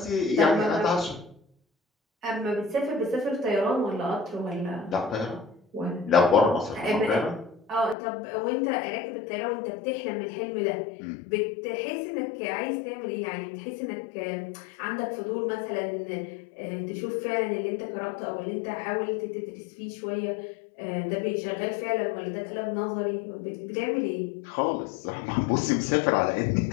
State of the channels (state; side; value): drops out; right; at 8.0 s